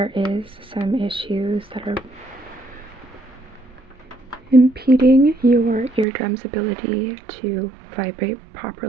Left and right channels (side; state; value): left; drops out; at 6.1 s